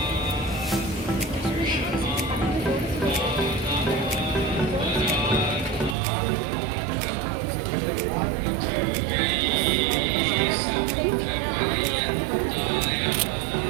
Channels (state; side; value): drops out; left; at 6.0 s